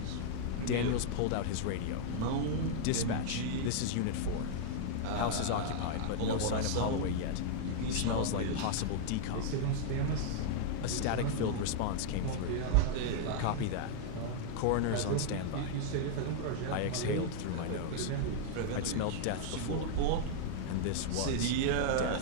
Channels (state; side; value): different; both; correlation -0.01